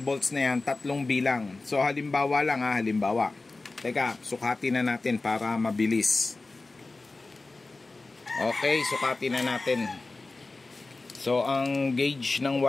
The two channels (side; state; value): right; quieter; 3.4 dB